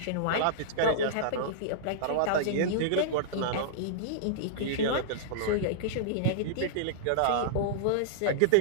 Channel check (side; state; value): both; different; correlation -0.02